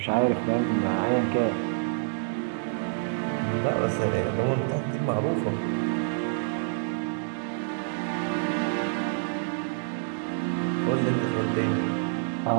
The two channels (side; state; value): left; silent; digital silence